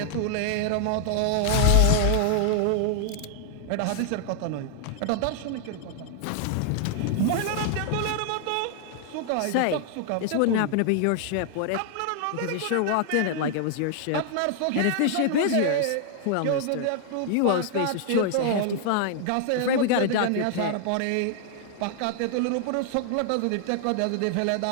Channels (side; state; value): both; different; correlation 0.00